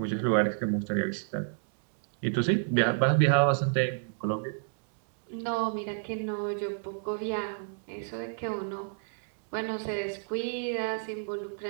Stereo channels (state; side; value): silent; left; digital silence